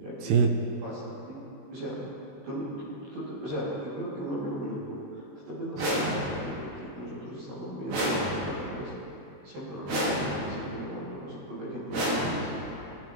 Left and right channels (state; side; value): late; left; 21 ms